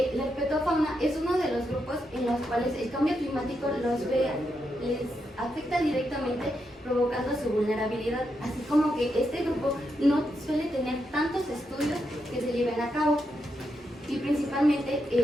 la herpetofauna es uno de los grupos en los cuales el cambio climático les afecta directamente, provocando su vulnerabilidad, así como que este grupo no suele tener tantos estudios que se lleven a cabo. Y principalmente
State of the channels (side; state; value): both; normal; correlation 0.83